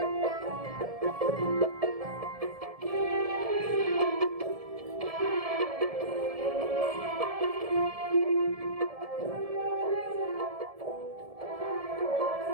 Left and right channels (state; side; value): late; left; 1.7 ms